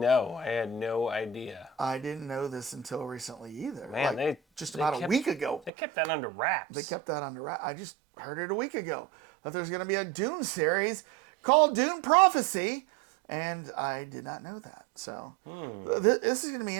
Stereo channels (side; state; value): left; drops out; at 5.7 s